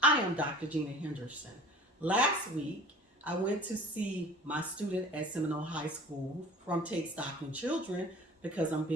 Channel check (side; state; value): both; normal; correlation 0.44